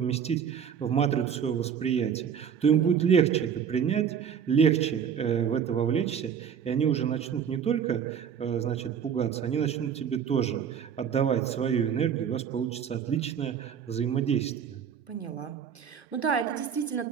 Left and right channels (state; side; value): quieter; left; 7.8 dB